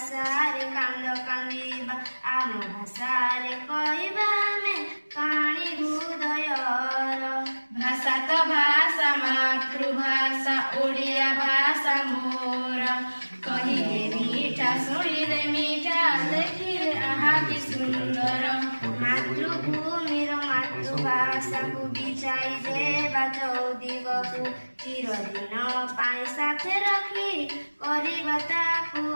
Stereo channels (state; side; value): inverted; both; correlation -1.00